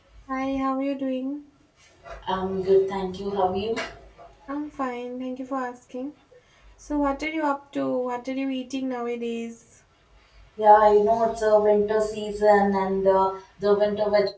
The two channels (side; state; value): both; identical; correlation 1.00